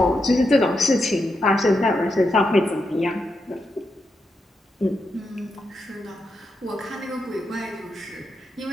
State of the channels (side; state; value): both; normal; correlation 0.85